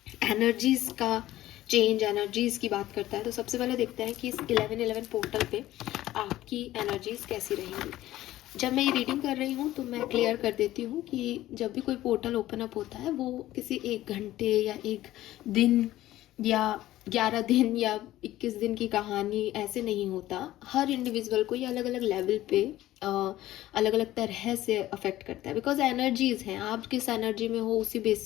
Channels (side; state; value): right; quieter; 15.0 dB